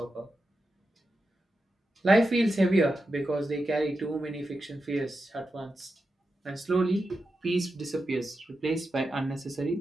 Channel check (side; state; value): both; normal; correlation 0.89